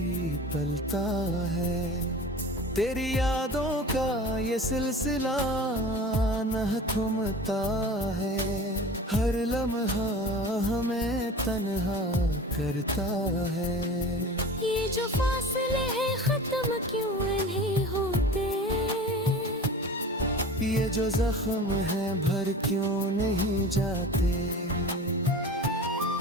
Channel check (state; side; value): normal; both; correlation 0.37